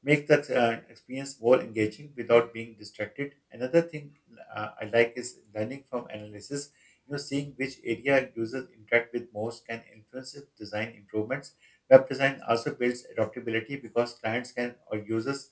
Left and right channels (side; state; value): both; identical; correlation 1.00